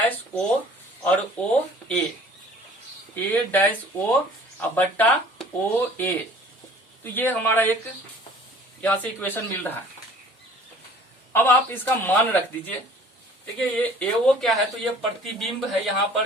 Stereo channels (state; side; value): normal; both; correlation 0.50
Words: O और OA, A डैश O और बट्टा OA। तो ये हमारा एक यहाँ से इक्वेशन मिल रहा है। अब आप इसका मान रख दीजिए। देखिए ये AO क्या है, तो ये प्रतिबिंब है यहाँ